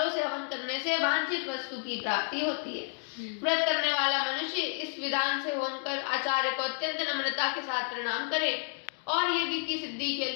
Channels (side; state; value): right; silent; 57 dB below the other